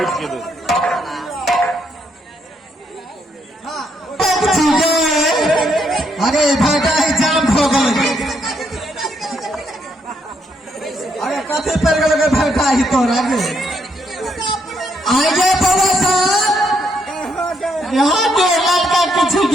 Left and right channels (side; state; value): both; normal; correlation 0.75